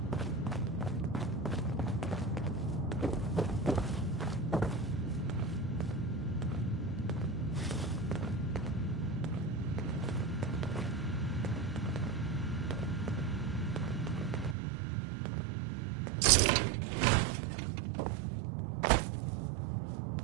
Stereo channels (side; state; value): left; drops out; at 14.6 s